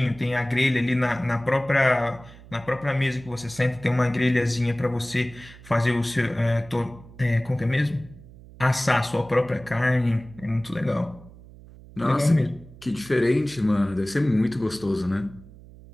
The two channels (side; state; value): right; noise; hum, 20 dB below the sound